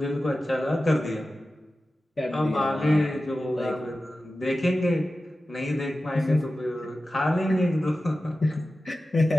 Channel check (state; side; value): normal; both; correlation 0.94